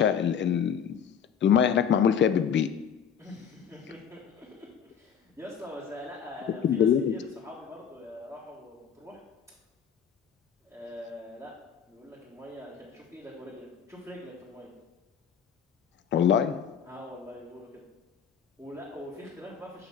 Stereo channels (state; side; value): quieter; right; 7.8 dB